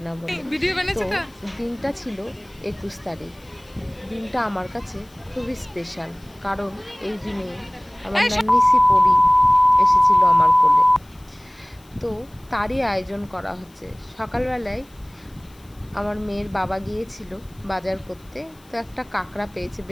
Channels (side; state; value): left; noise; hiss, 29 dB below the sound